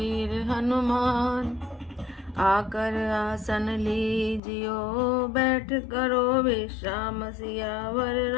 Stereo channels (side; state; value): right; drops out; at 4.4 s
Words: हनुमान, आकर आसन लीजियो, बैठ करो विश्राम। सियावर